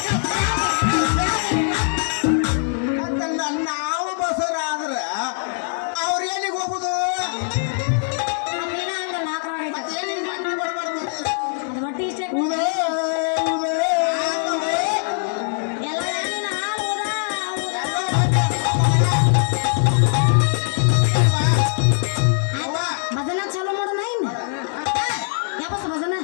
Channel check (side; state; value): right; silent; digital silence